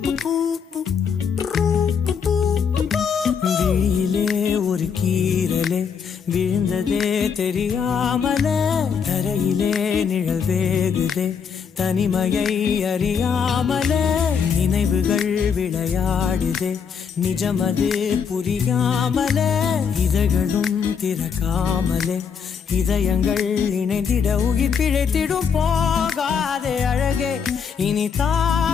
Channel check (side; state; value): right; quieter; 6.7 dB